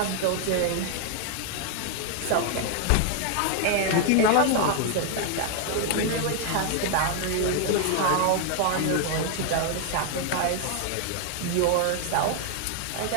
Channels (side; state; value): both; different; correlation 0.00